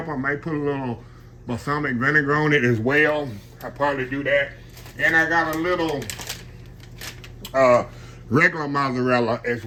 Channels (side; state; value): both; identical; correlation 1.00